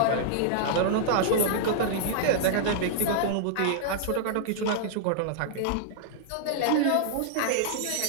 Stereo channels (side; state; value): both; different; correlation -0.01